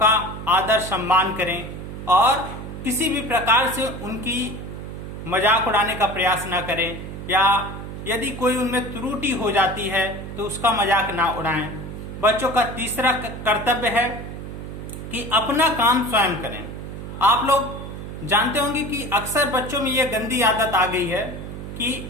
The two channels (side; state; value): right; noise; hum, 9 dB below the sound